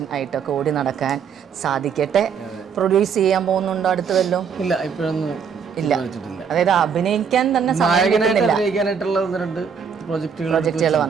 ആയിട്ടൊക്കെ ഓടി നടക്കാൻ സാധിക്കട്ടെ. പ്രൊഡ്യൂസ് ചെയ്യാൻ പോകുന്നുണ്ടോ അടുത്ത് വല്ലതും? ഇല്ല, ഇപ്പോഴൊന്നും ഇല്ല. അതായത് അഭിനയിക്കാൻ തന്നെ പ്രോജക്റ്റുകൾ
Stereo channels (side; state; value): left; quieter; 6.7 dB